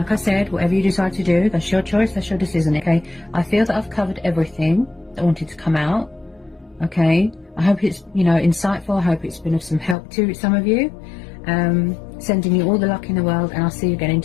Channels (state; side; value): drops out; right; at 10.0 s